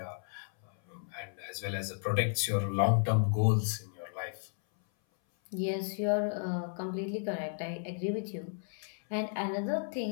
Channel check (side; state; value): right; silent; 55 dB below the other